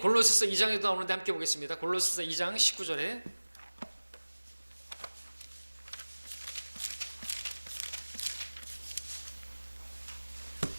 골로새서 2장에도 나오는데 함께 보겠습니다. 골로새서 2장 19절에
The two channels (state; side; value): inverted; both; correlation -1.00